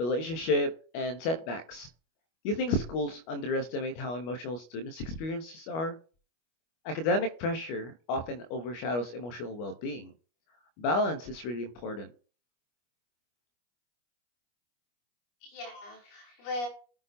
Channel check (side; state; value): right; late; 25 ms